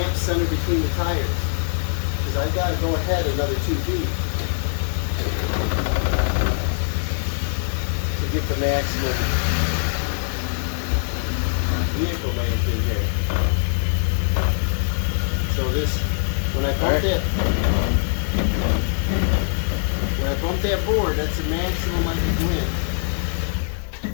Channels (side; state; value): right; silent; 64 dB below the other